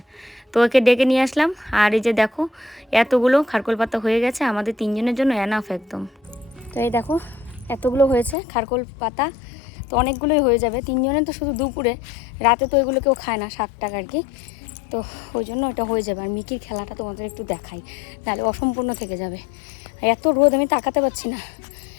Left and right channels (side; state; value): right; drops out; at 8.3 s